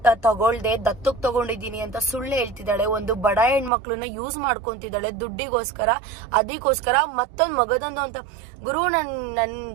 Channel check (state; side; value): drops out; left; at 3.7 s